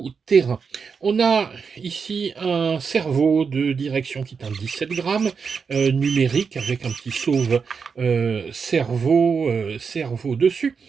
On a ici un cerveau de direction qui est un 17 grammes, numérique, avec un petit sauve cerveau dessus.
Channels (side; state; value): left; quieter; 5.7 dB